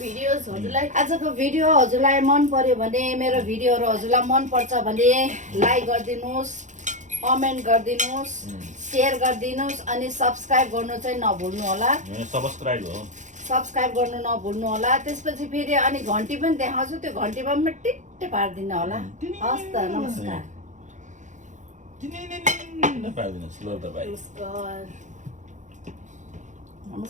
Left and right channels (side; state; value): left; late; 0.35 ms